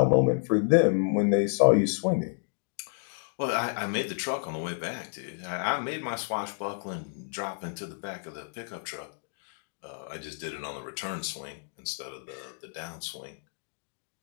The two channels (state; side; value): silent; right; digital silence